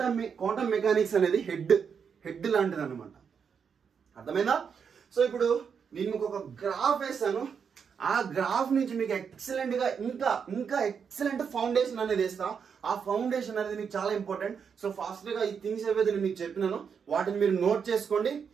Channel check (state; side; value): quieter; left; 6.7 dB